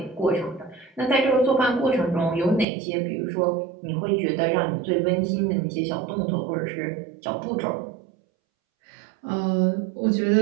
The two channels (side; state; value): left; drops out; at 2.7 s